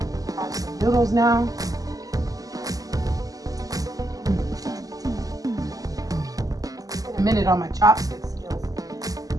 I have some noodles now. Been a minute on my chopstick skills,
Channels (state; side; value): late; left; 0.17 ms